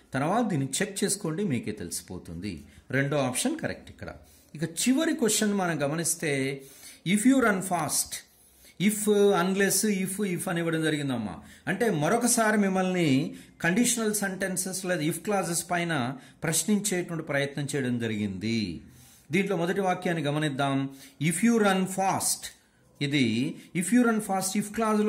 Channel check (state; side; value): identical; both; correlation 1.00